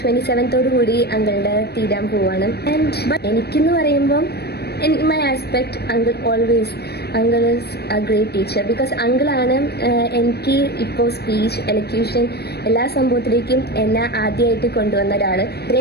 27th കൂടി അങ്കിളുടെ തീരാൻ പോവാണ്. ആൻഡ് എനിക്കെന്ന് പറയുമ്പം in my aspect, uncle is a great teacher because uncle ആണ് എനിക്ക് ഇപ്പോൾ സ്പീച്ച്, എലക്യൂഷൻ എല്ലാ സംഭവത്തിലേക്കും എന്നെ ആദ്യമായിട്ട് കൊണ്ടുവന്ന ഒരാൾ.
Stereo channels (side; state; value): right; late; 0.47 ms